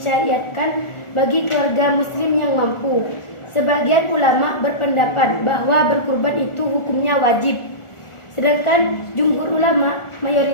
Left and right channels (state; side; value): late; right; 1.4 ms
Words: bagi keluarga muslim yang mampu. Sebagian ulama berpendapat bahwa berkurban itu hukumnya wajib. Sedangkan jumhur ulama,